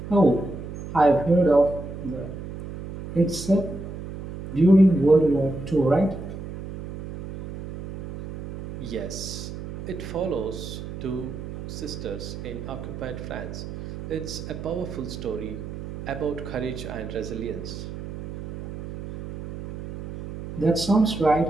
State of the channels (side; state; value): right; noise; hum, 10 dB below the sound